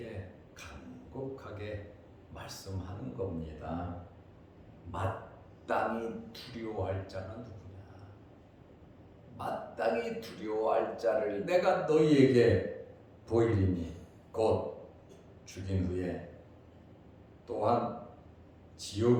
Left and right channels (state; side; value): identical; both; correlation 1.00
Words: 간곡하게 말씀하는 겁니다. 마땅히 두려워할 자는 누구냐? 마땅히 두려워할 자를 내가 너희에게 보이리니 곧 죽인 후에 또한